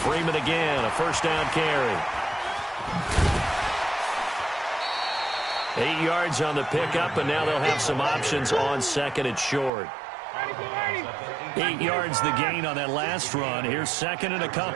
Freeman again, a first down carry. 8 yards on the pickup, and now they'll have some options on second and short. 8 yards the gain on that last run. Here's second and a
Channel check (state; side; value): drops out; left; at 9.7 s